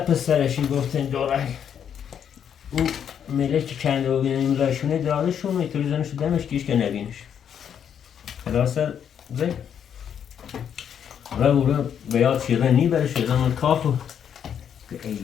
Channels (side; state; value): right; quieter; 8.5 dB